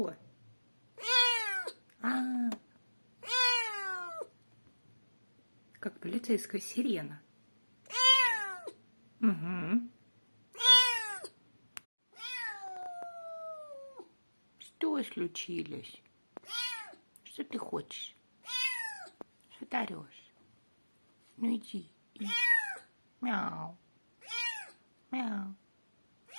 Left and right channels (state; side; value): inverted; both; correlation -1.00